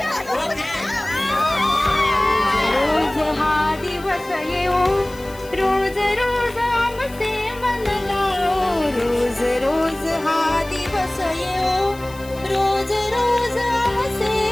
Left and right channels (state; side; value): noise; left; hiss, 21 dB below the sound